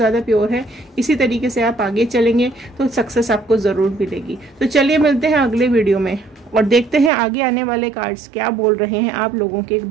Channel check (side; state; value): left; drops out; at 7.1 s